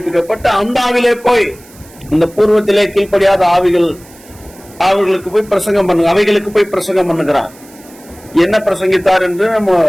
அந்த ஆவிலே போய் இந்த பூர்வத்திலே கீழ்ப்படியாத ஆவிகள் அவர்களுக்கு போய் பிரசங்கம் பண்ணு அவைகளுக்கு போய் பிரசங்கம் பண்ணுகிறார். என்ன பிரசங்கித்தார் என்று நம்ம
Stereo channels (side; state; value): right; noise; hiss, 24 dB below the sound